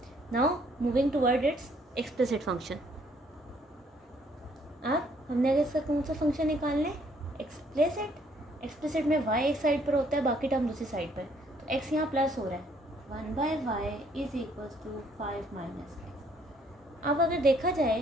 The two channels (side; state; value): both; normal; correlation 0.65